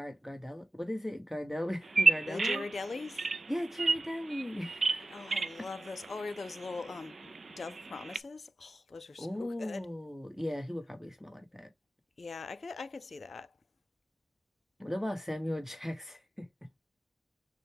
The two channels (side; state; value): both; normal; correlation 0.94